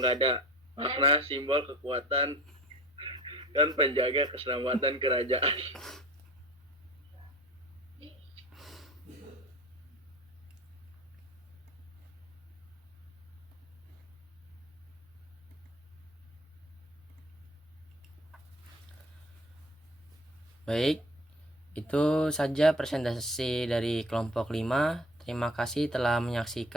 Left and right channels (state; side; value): normal; both; correlation 0.44